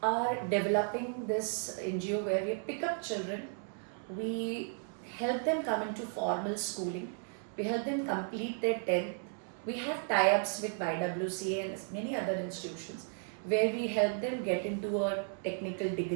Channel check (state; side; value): silent; left; 55 dB below the other